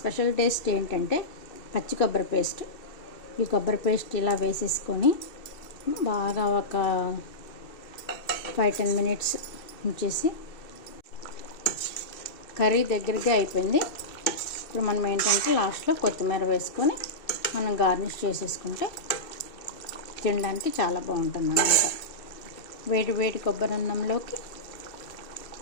టేస్ట్ ఏంటంటే పచ్చి కొబ్బరి పేస్ట్. ఈ కొబ్బరి పేస్ట్ ఇలా వేసేసుకొని బాగా ఒక 5-10 మినిట్స్ ఉంచేసి కర్రీ దగ్గరగా అయిపోయింది. ఇప్పుడు మనం ఏంటంటే లాస్ట్లో కొత్తిమీర వేసుకొని మనం గార్నిష్ చేసేసుకుంటే తినడానికి చాలా బాగుంటుంది అన్నమాట. వేడి వేడి కొబ్బరి అన్నంలోకి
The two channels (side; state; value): right; late; 2.7 ms